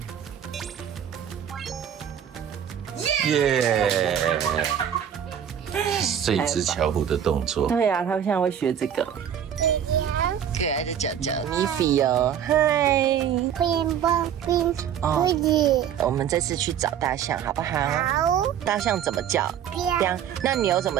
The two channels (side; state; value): left; quieter; 9.1 dB